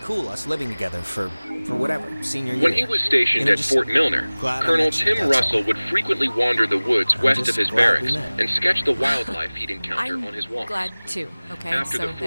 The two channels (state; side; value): inverted; both; correlation -1.00